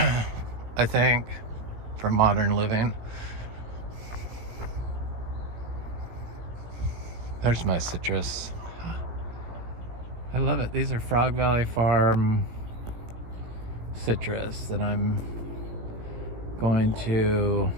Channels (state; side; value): late; left; 17 ms